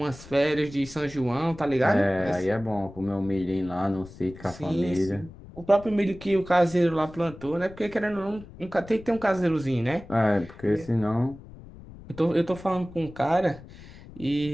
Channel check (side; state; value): left; noise; rumble, 18 dB below the sound